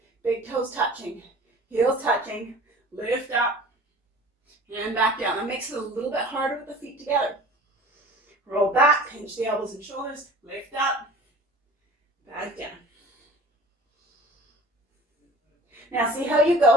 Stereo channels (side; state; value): both; normal; correlation 0.43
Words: Big toes touching, heels touching, lift up, and back down. That makes it a little bit harder with the feet together. Roll back, pinch the elbows and shoulders, lift up, back down. Now see how you